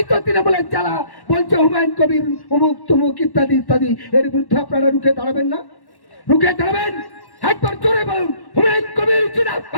তো তৃণমূলের যারা বলছে হুমায়ুন কবির অমুক তমুক ইত্যাদি ইত্যাদি, এর বিরুদ্ধে আপনারা রুখে দাঁড়াবেন না? রুখে দাঁড়াবেন? একবার জোরে বলুন হুমায়ুন কবির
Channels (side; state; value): right; late; 1.1 ms